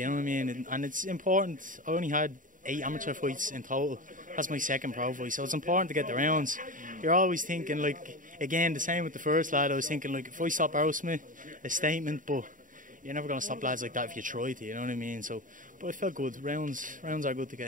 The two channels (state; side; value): late; left; 0.38 ms